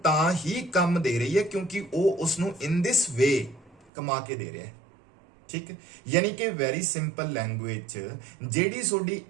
तां ही काम दे रही है क्योंकि वो उसनूं इन दिस वे कमा के दे रहा है, ठीक है। यानी कि वेरी सिंपल लैंग्वेज जेडी सोडी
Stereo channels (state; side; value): drops out; left; at 3.9 s